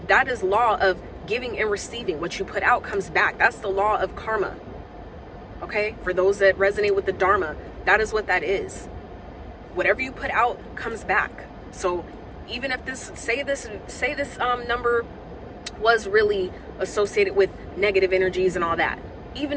That is law of giving and receiving. What you put out comes back. That's the law of karma. Okay? For those that resonate with the Dharma, that is what that is. Whatever you put out comes back. So even if say this number was really associated with negative energies and all that,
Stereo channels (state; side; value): identical; both; correlation 1.00